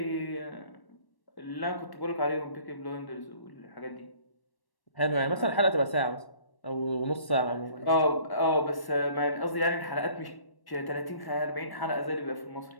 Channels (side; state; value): right; late; 1.1 ms